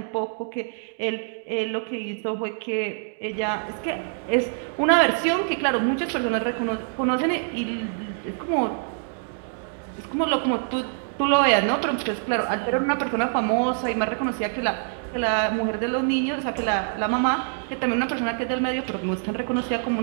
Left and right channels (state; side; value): silent; left; digital silence